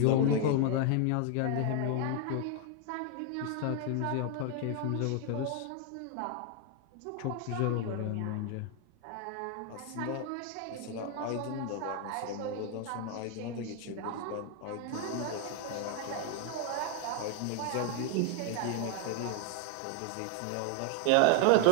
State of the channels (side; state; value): both; different; correlation 0.00